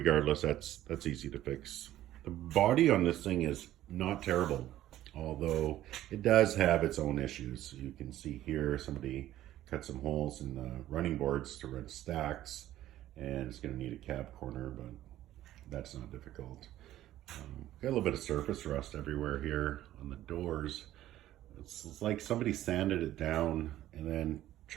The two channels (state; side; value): quieter; left; 13.6 dB